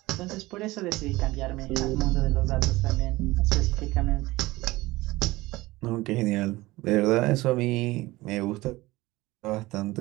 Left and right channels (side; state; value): left; quieter; 19.6 dB